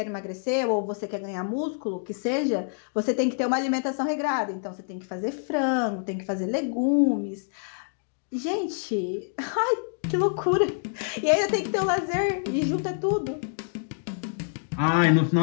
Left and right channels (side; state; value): right; silent; digital silence